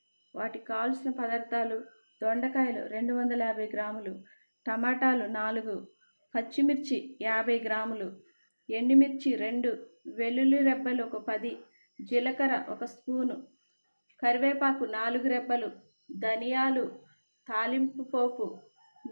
వాటికి కావాల్సిన పదార్థాలు: దొండకాయలు 250 గ్రాములు, టమాటాలు 4, పచ్చిమిర్చి 50 గ్రాములు, ఎండుమిర్చి 2, వెల్లుల్లి రెబ్బలు ఒక 10, జీలకర్ర 1 స్పూను, కరివేపాకు 4 రెబ్బలు, ధనియాలు, తాలింపు పోపు,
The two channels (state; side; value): inverted; both; correlation -1.00